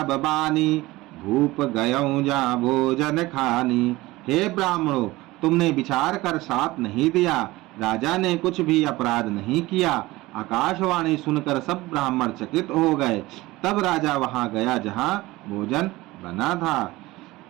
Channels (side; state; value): left; quieter; 19.4 dB